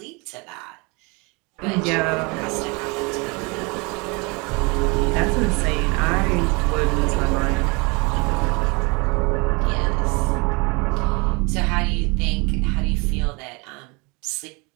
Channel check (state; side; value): quieter; left; 29.0 dB